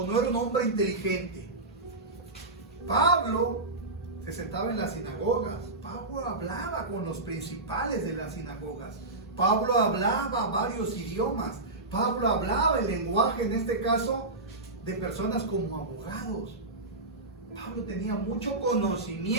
no era un hombre inteligente. Pablo se sentaba en las sinagogas. Pablo hablaba con los principales de las sinagogas. Pablo hablaba varios idiomas. Pablo hablaba el lenguaje, en este caso, de personas como abogados. Pablo tenía mucho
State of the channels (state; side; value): quieter; left; 3.0 dB